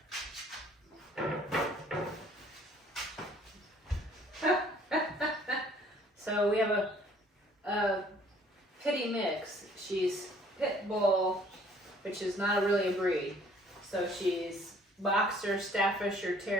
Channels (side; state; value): both; normal; correlation 0.58